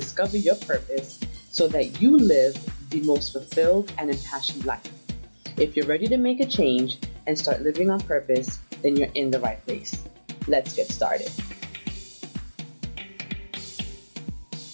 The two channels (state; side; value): inverted; both; correlation -1.00